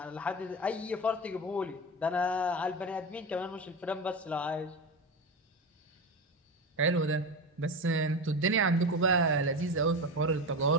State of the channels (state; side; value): normal; both; correlation 0.22